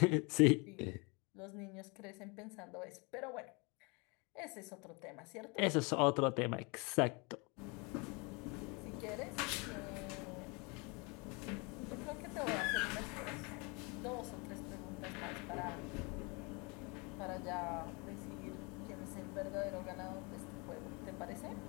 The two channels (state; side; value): quieter; right; 29.7 dB